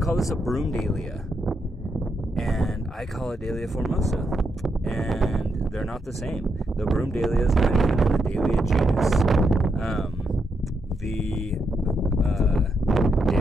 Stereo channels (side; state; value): both; normal; correlation 0.81